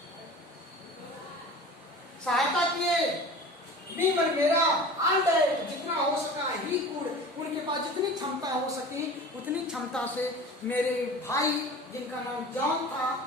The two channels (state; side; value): normal; both; correlation 0.38